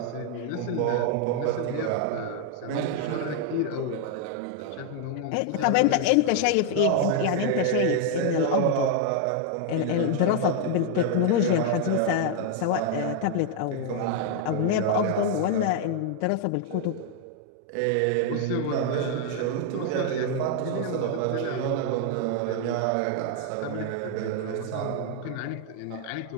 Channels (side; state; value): both; different; correlation 0.00